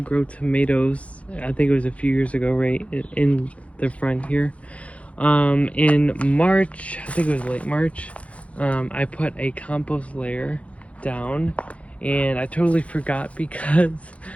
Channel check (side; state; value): right; late; 0.064 ms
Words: tomatoes, I think it was a few years ago, right in the front here. In March, I think it was late March, I put a compost layer down, and I totally forgot because